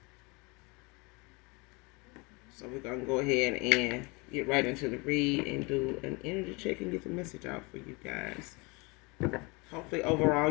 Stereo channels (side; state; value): right; quieter; 27.8 dB